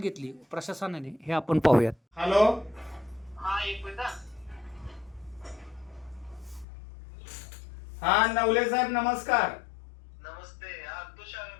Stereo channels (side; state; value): right; drops out; at 6.7 s